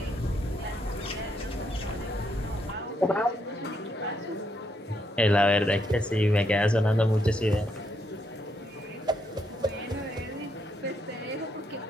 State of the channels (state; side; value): normal; both; correlation 0.76